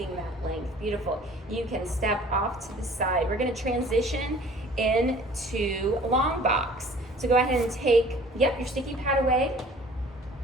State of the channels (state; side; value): normal; both; correlation 0.50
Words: that length. Beautiful. You can step off to the side. We're going to transition into long box. So go ahead and take, your sticky pad away.